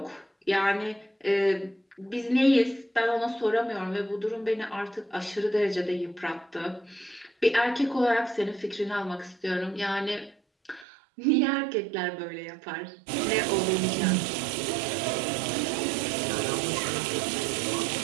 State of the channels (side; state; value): left; drops out; at 10.9 s